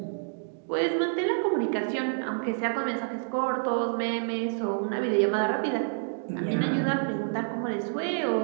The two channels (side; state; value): left; silent; digital silence